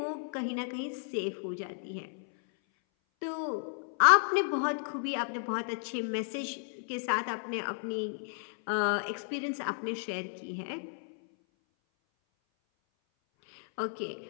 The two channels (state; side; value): silent; right; 56 dB below the other